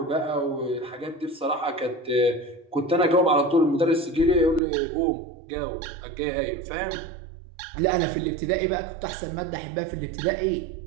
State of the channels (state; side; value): drops out; left; at 4.6 s